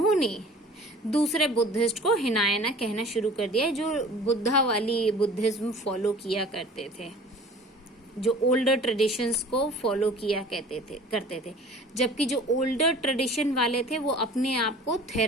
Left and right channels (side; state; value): both; normal; correlation 0.45